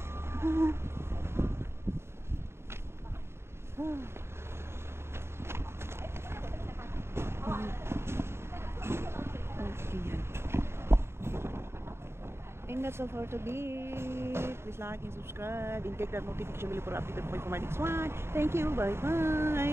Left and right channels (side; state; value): left; late; 0.12 ms